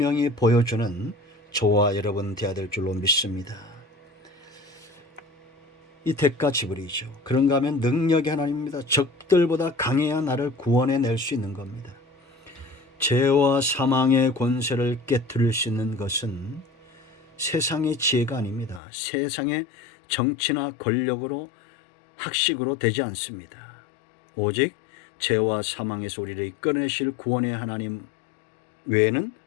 보여주는 저와 여러분 되어야 될 줄로 믿습니다. 이 대가 지불이죠. 그런가 하면 능력의 하나님입니다. 적들보다 강해야 나를 구원해낼 수 있는 겁니다. 죄와 사망의 권세를 깨뜨릴 수 있는 것은 세상의 지혜가 아닙니다. 세상의 정치나 권력으로 학식으로 되지 않습니다. 오직 죄와 사망에서 우리를 이끌어내실 구원의 하나님 외에는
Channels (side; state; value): right; drops out; at 18.8 s